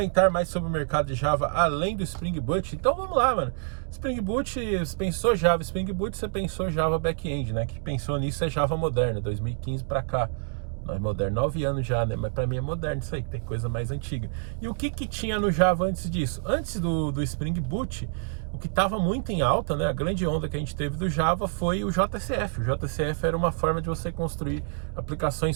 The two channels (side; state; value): left; silent; 60 dB below the other